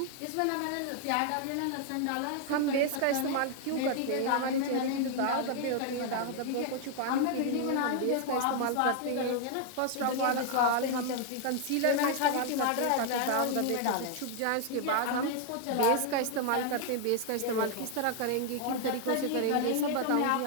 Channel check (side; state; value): both; different; correlation 0.00